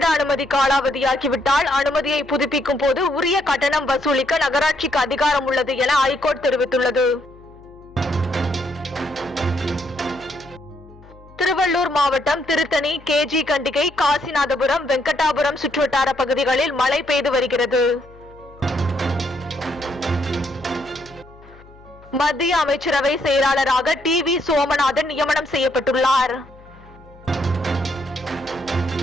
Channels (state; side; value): noise; left; hum, 23 dB below the sound